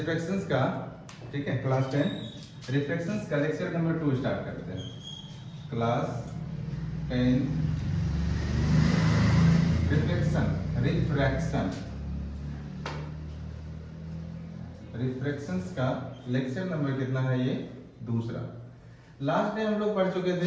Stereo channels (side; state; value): both; identical; correlation 1.00